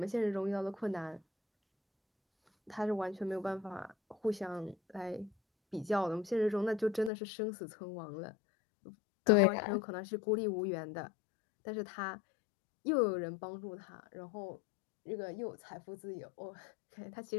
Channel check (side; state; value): right; drops out; at 7.1 s